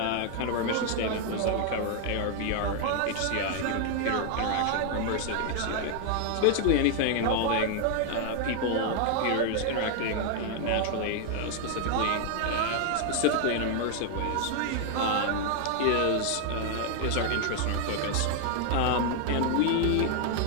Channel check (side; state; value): both; different; correlation 0.00